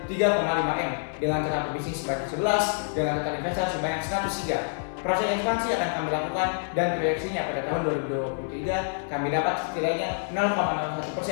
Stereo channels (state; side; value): silent; right; 60 dB below the other